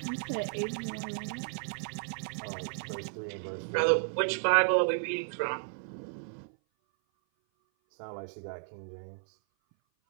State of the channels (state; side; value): silent; left; 56 dB below the other